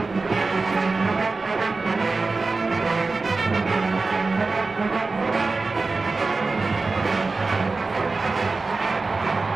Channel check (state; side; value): quieter; left; 3.8 dB